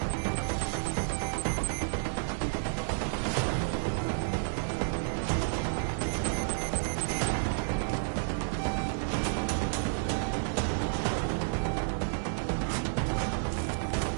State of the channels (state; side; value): silent; left; digital silence